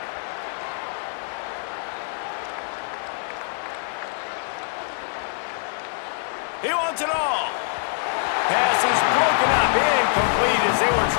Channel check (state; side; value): silent; right; 59 dB below the other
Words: He wants it all. Pass is broken up, incomplete as they were